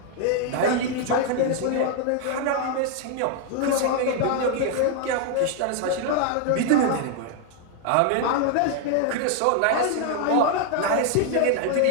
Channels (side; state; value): both; different; correlation 0.00